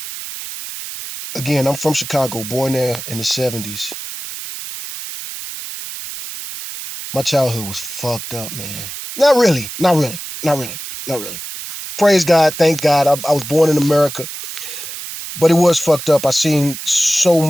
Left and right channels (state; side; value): noise; right; hiss, 9 dB below the sound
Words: Again, I'm from Chicago, born there in the 70s. My childhood was fucked up, man. Not really. Praise God, thank God. I was born in America, but it was fucked up. I seen so